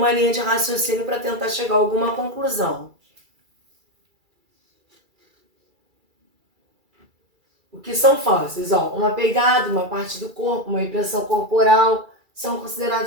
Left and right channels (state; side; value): late; left; 2.3 ms